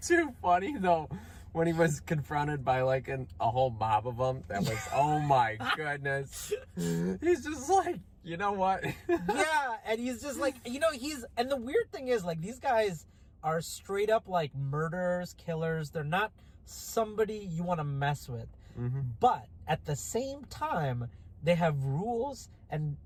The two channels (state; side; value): identical; both; correlation 1.00